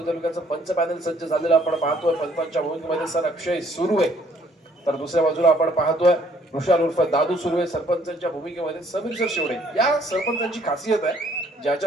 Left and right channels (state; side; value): normal; both; correlation 0.63